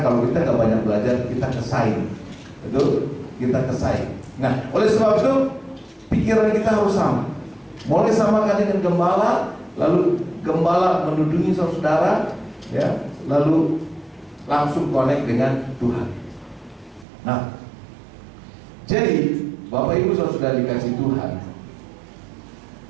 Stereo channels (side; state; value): left; drops out; at 17.1 s